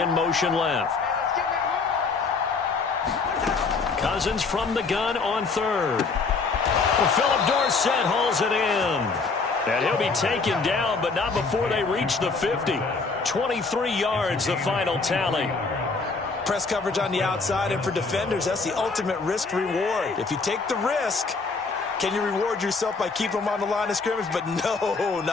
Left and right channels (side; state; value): right; quieter; 4.3 dB